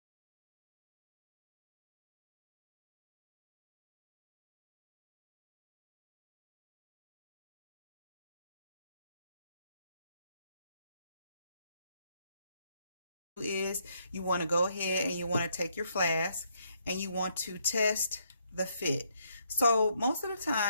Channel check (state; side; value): inverted; both; correlation -0.73